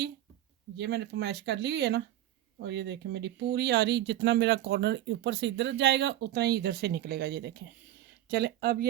ये मैंने फरमाइश कर ली हुई है ना, और ये देखें मेरी पूरी आ रही, जितना मेरा कॉर्नर ऊपर से इधर जाएगा उतना ही इधर से निकलेगा। ये देखें, चले अब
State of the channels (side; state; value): left; quieter; 13.2 dB